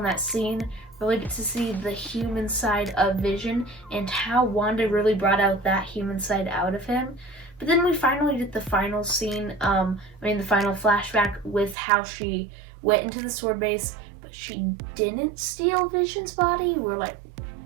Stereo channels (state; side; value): drops out; left; at 11.8 s